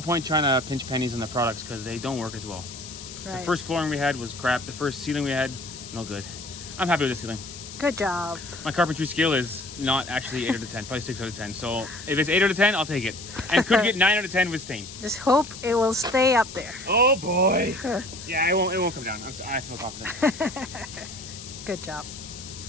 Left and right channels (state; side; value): noise; left; hiss, 13 dB below the sound